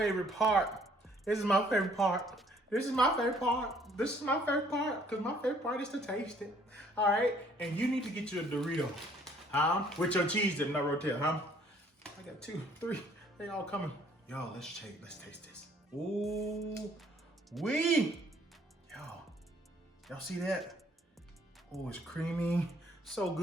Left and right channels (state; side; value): normal; both; correlation 0.61